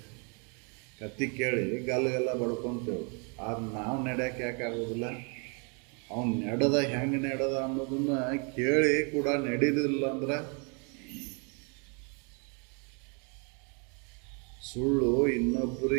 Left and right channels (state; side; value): quieter; left; 36.1 dB